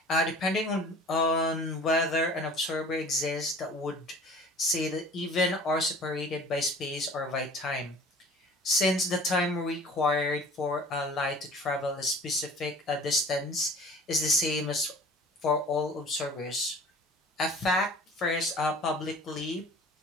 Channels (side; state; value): both; normal; correlation 0.45